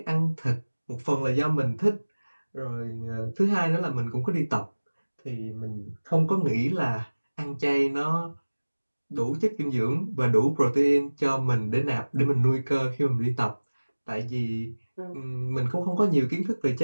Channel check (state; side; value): inverted; both; correlation -1.00